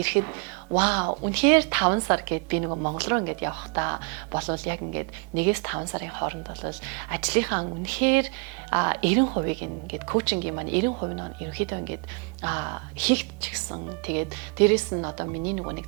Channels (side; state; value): left; quieter; 32.9 dB